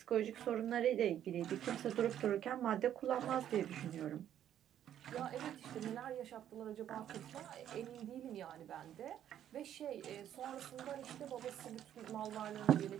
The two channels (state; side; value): quieter; left; 10.6 dB